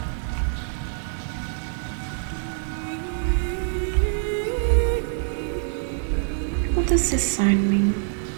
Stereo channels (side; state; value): left; silent; 62 dB below the other